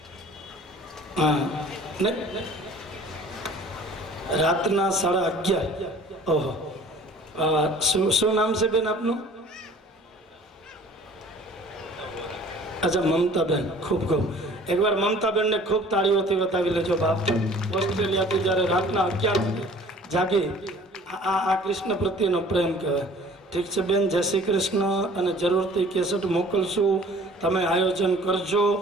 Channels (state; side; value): normal; both; correlation 0.49